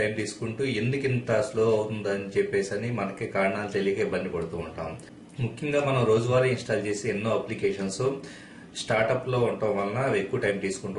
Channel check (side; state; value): both; identical; correlation 1.00